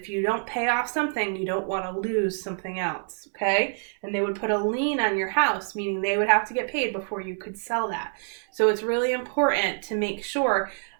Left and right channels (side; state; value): left; silent; 60 dB below the other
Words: you don't pay off something, you don't want to lose something else, okay? And they would put a lien on your house, meaning they would have to get paid before you could sell that. So it's really important to make sure